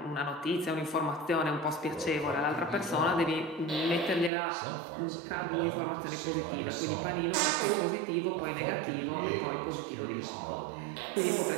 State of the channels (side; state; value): left; drops out; at 4.3 s